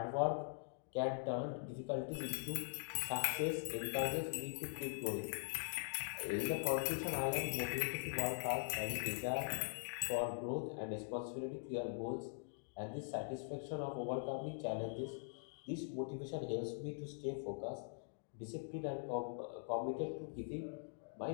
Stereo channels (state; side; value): silent; right; digital silence